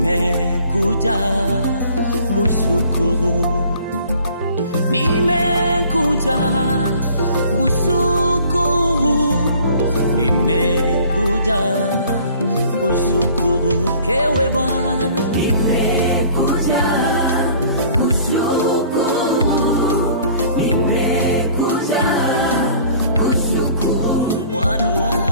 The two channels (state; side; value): inverted; both; correlation -0.52